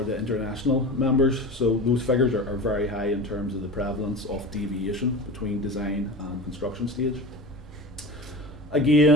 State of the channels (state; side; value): normal; both; correlation 0.32